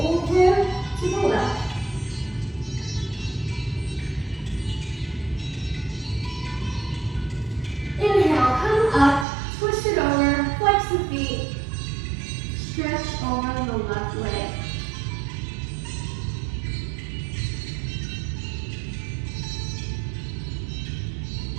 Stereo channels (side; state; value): left; drops out; at 9.2 s